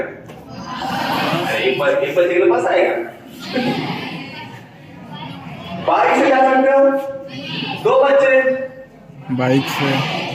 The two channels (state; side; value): identical; both; correlation 1.00